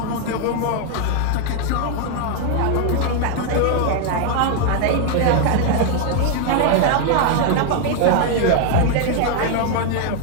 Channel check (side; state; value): both; different; correlation 0.00